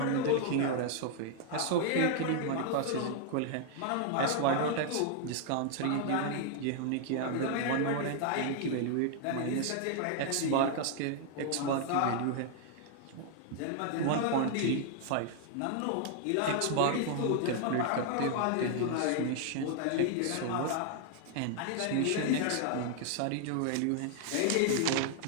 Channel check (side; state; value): both; different; correlation 0.00